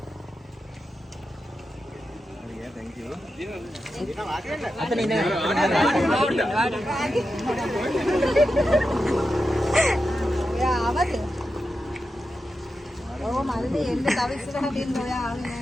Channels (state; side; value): normal; both; correlation 0.90